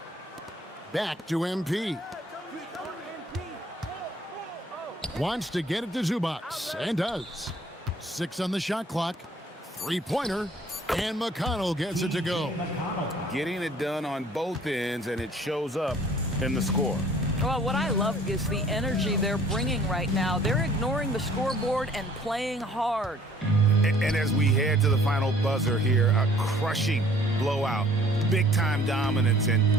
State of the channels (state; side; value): normal; both; correlation 0.56